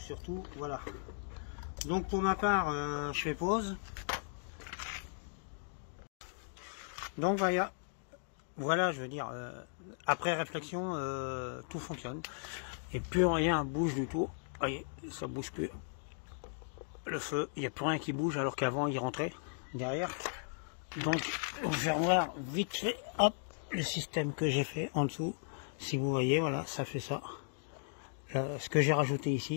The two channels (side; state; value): right; silent; digital silence